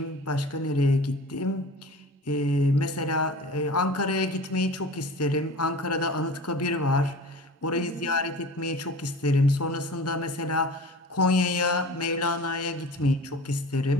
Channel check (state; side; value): normal; both; correlation 0.38